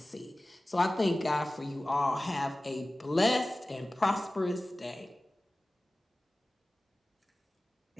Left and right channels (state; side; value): normal; both; correlation 0.97